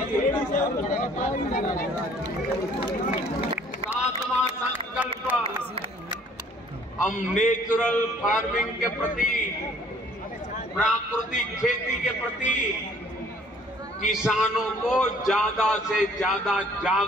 सातवां संकल्प, हम नेचुरल फार्मिंग के प्रति, प्राकृतिक खेती के प्रति किसानों को ज्यादा से ज्यादा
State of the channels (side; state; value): both; normal; correlation 0.57